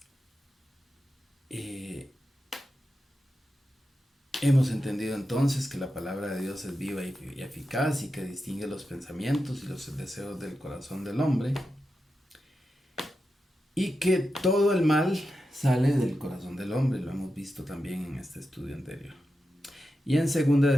Hemos entendido entonces que la palabra de Dios es viva y eficaz y que distingue los pensamientos y los deseos del corazón del hombre, y que todo el mal sale del corazón del hombre. Lo hemos visto también en este estudio anterior. Y en 2 de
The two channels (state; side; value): normal; both; correlation 0.90